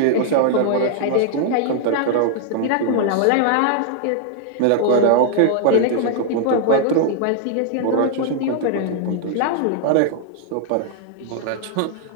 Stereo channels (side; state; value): both; different; correlation -0.01